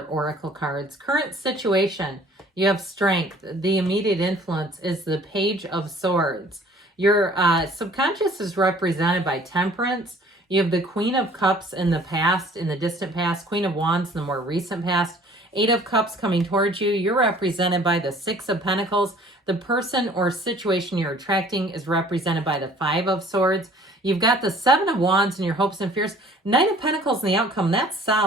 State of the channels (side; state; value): both; normal; correlation 0.53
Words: oracle cards. Current situation, you have strength. The immediate influence is the Page of Swords. Your subconscious is represented by Temperance. You have the Queen of Cups in the past, in the distant past, Queen of Wands in the more recent past, Eight of Cups coming towards you. You're represented by the Six of Pentacles. The person or situation you're attracting is represented by the Five of Swords. You've got the Seven of Wands in your hopes and fears. Knight of Pentacles in the outcome. That's